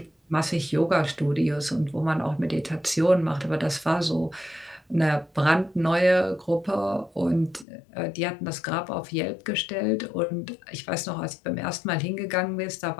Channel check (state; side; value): drops out; right; at 7.7 s